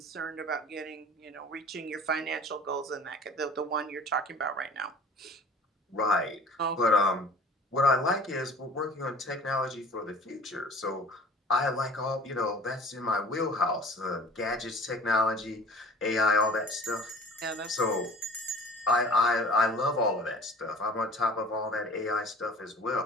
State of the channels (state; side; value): normal; both; correlation 0.44